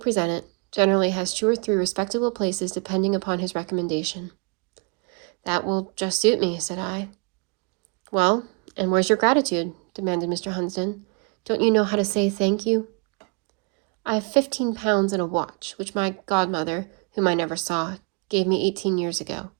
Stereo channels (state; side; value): quieter; left; 35.1 dB